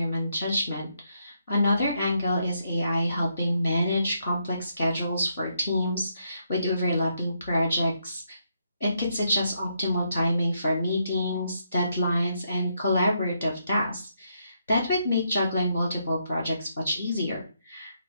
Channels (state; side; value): inverted; both; correlation -0.77